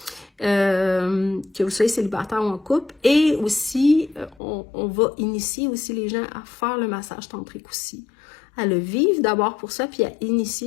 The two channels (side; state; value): right; drops out; at 4.4 s